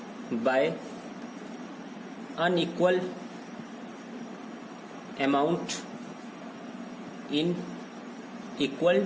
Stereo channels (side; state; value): both; identical; correlation 1.00